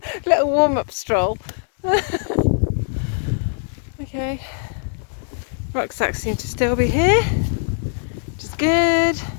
Little warm-up stroll. Okay. Rucksacks seem to still be here, which is good.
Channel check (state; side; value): silent; right; digital silence